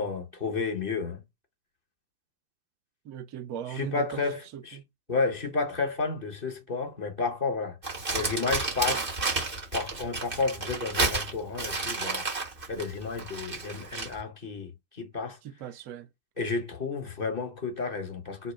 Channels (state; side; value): late; left; 2.6 ms